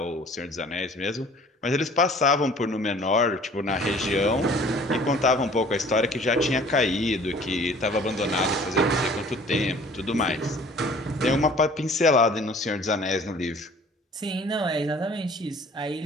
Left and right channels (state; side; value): normal; both; correlation 0.51